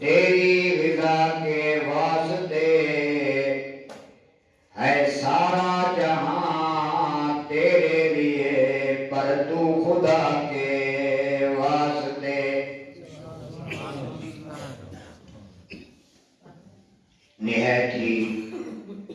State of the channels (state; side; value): identical; both; correlation 1.00